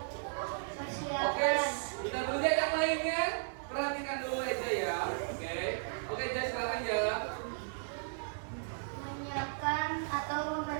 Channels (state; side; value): silent; left; digital silence